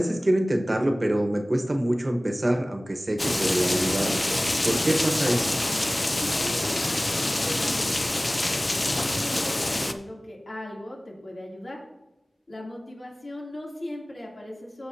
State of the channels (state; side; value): normal; both; correlation 0.98